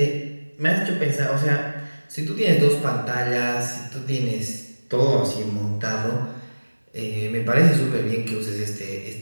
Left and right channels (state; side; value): inverted; both; correlation -1.00